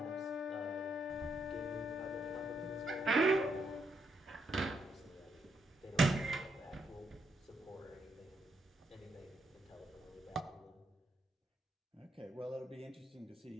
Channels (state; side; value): normal; both; correlation 0.78